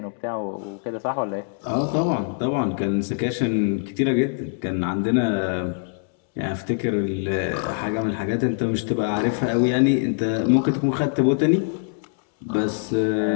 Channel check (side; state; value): right; silent; 63 dB below the other